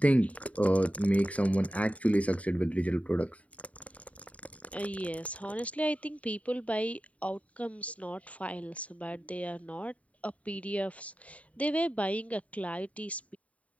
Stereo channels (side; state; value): right; late; 0.067 ms